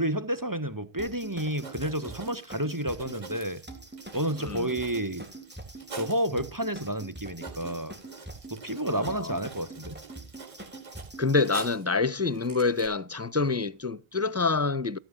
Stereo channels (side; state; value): left; late; 1.6 ms